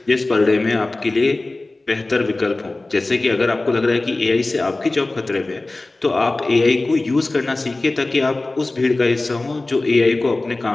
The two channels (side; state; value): right; quieter; 3.0 dB